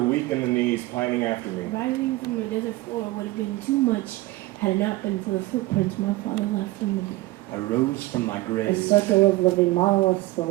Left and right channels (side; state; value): left; quieter; 18.8 dB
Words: in the knees, pining after me. Rising from the desert floor would have been too much had it not been for the footprints my father left for me. I rose from my grave. A circle of living monoliths